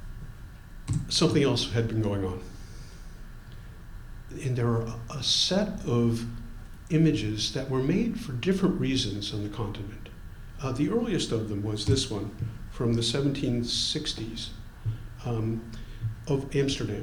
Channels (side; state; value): both; identical; correlation 1.00